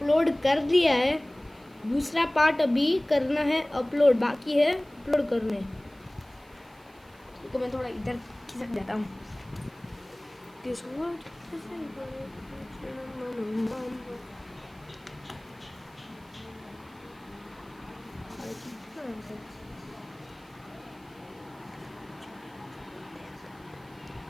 कर दिया है, दूसरा पार्ट अभी करना है अपलोड, बाकी है अपलोड करने। तो मैं थोड़ा इधर खिसक जाता हूँ।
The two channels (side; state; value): right; noise; hiss, 29 dB below the sound